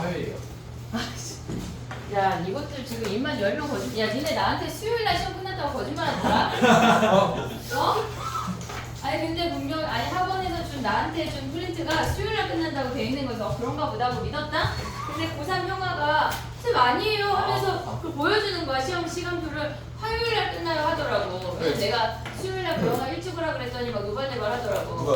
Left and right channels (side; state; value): both; identical; correlation 1.00